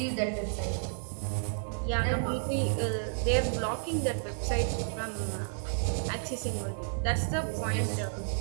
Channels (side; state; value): left; silent; digital silence